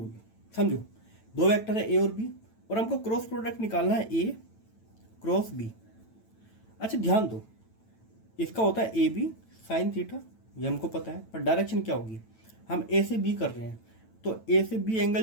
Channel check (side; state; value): right; late; 9.0 ms